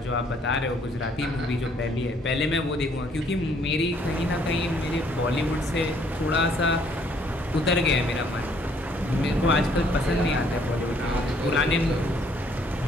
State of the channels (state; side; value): normal; both; correlation 0.64